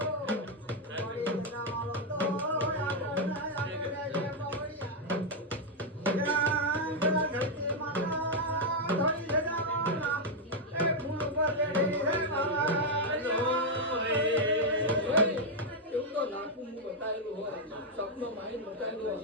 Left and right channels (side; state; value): both; normal; correlation 0.00